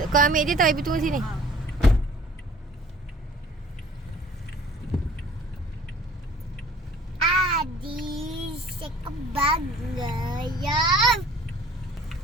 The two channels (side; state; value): both; normal; correlation 0.51